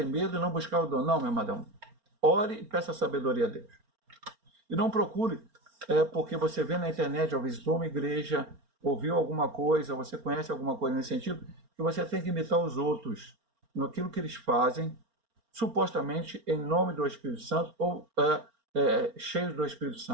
medo e não buscar o dom. Não, meu amadão. Ore e peça sabedoria a Deus. E não procure, porque você vê na internet, ou visitou uma igreja, ouviu alguma coisa, você conhece alguma coisa nesse sentido, que você tem que imitar os outros naquilo que eles fazem, supostamente em nome do Espírito Santo ou cheios do Espírito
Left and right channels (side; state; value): left; late; 4.3 ms